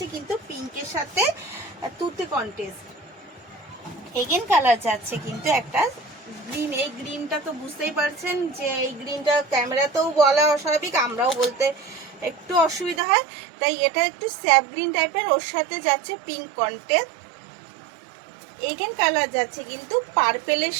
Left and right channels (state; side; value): drops out; left; at 13.0 s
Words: কিন্তু পিঙ্কের সাথে তুতে কন্টেস্ট, এগেন কালার যাচ্ছে কিন্তু একটা গ্রিন। এই গ্রিনটা তো বুঝতেই পারছেন যে এই গ্রিনটা ক্যামেরাতেও বলা অস্বাভাবিক, আমরাও বলতে একটু অসুবিধা হয়, তাই এটা একটু স্যাপ গ্রিন টাইপের। ওর সাথে যাচ্ছে পিঙ্ক কন্টেস্ট, এগেন কালার যাচ্ছে কিন্তু পার্পেলের